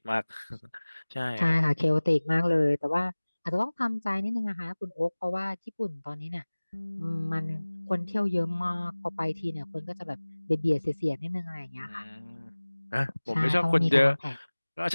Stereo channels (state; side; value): inverted; both; correlation -1.00